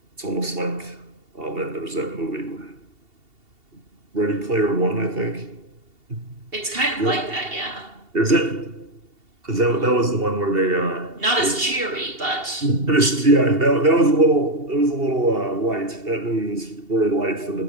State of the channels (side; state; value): left; late; 2.7 ms